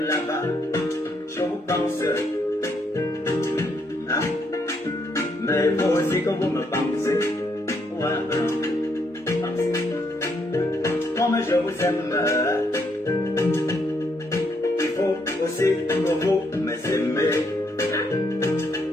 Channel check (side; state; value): both; normal; correlation 0.74